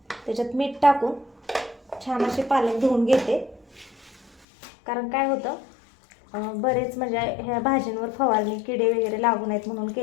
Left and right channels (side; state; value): right; drops out; at 4.5 s